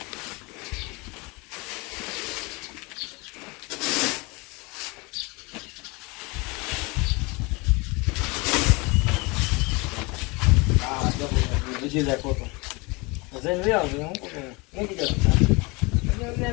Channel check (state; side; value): quieter; right; 26.9 dB